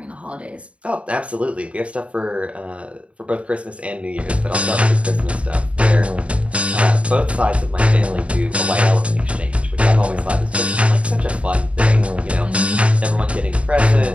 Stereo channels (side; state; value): left; late; 0.063 ms